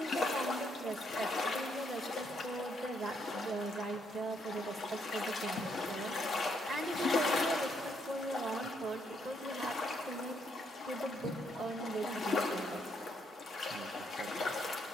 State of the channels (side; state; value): both; normal; correlation 0.74